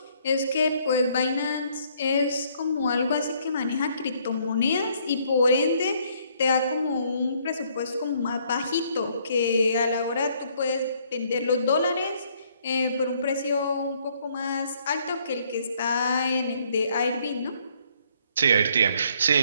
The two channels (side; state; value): both; inverted; correlation -0.66